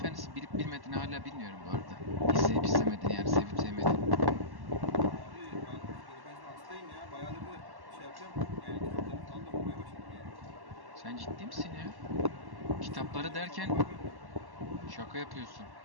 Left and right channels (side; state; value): left; late; 1.1 ms